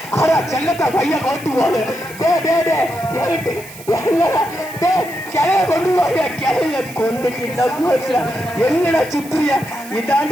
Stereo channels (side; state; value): right; noise; hiss, 17 dB below the sound